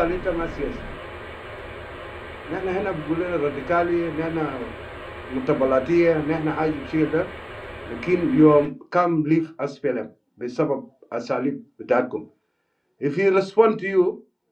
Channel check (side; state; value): both; identical; correlation 1.00